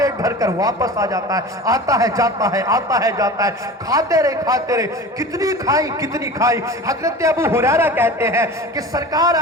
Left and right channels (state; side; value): normal; both; correlation 0.36